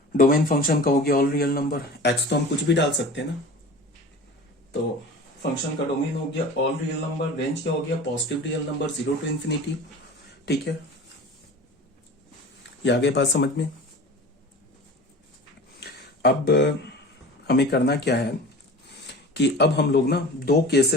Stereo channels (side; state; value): both; normal; correlation 0.38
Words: डोमेन फंक्शन का हो गया ऑल रियल नंबर। x तो हम कुछ भी डाल सकते हैं ना, तो फंक्शन का डोमेन हो गया ऑल रियल नंबर, रेंज क्या हो गया positive real number 0 to infinity. ठीक है, ये आगे बात समझ में। अब हमें करना क्या है कि अब हम लोग ना दो